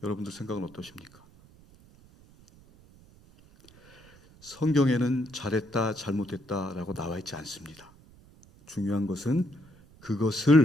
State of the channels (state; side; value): noise; right; rumble, 25 dB below the sound